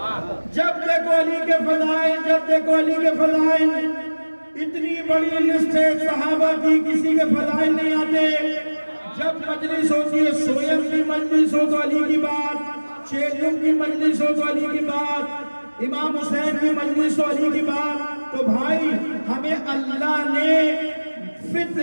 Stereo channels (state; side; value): inverted; both; correlation -1.00